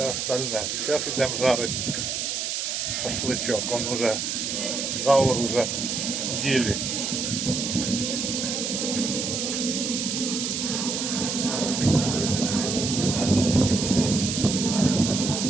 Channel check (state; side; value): noise; right; hiss, 2 dB below the sound